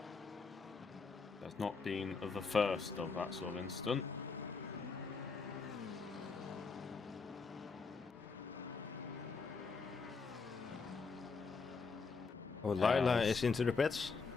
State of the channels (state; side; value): quieter; right; 4.7 dB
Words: That's not been the first of that sort of incident. Oh, Lila is into the pits.